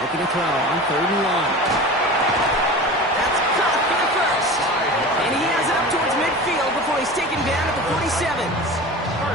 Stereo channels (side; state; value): both; normal; correlation 0.34